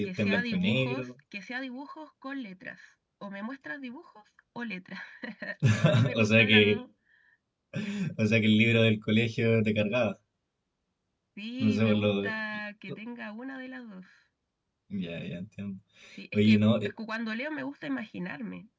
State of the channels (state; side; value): identical; both; correlation 1.00